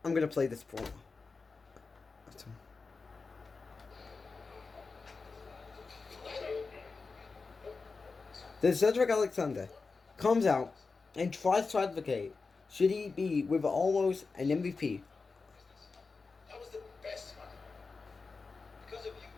I'm going to play this promo. Then Cedric Alexander comes out and tries to advocate should he be with almost an MVP. That was the best one. Because of you,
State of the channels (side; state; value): right; quieter; 4.3 dB